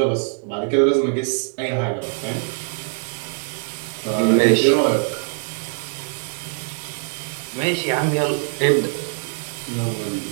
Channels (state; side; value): silent; left; 58 dB below the other